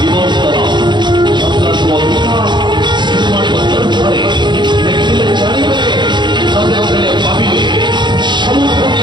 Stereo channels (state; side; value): late; left; 0.22 ms